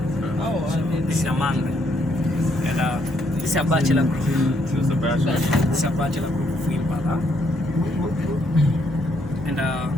This is among them. And this is a bachelor group. This is a bachelor. This is a bachelor group of impala. And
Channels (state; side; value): normal; both; correlation 0.73